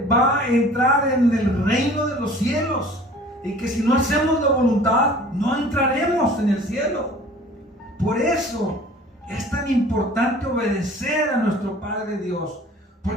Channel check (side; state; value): both; normal; correlation 0.47